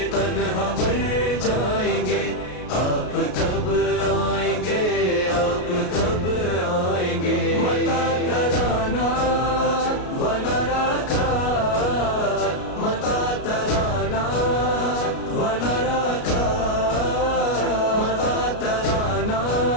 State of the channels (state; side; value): late; right; 33 ms